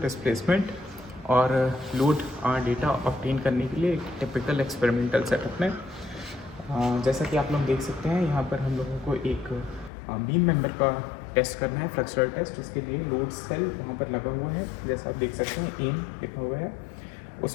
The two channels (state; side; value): drops out; right; at 9.9 s